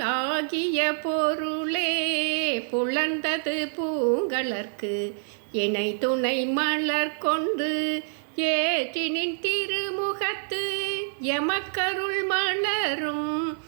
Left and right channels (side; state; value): left; silent; digital silence